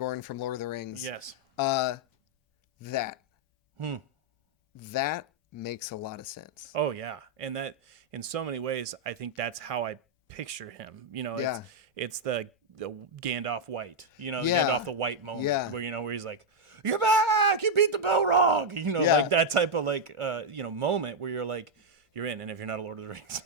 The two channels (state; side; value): normal; both; correlation -0.01